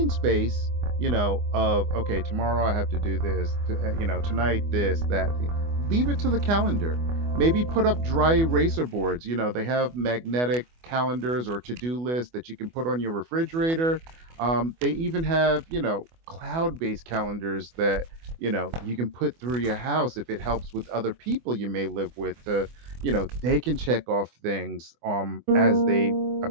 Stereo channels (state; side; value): late; left; 24 ms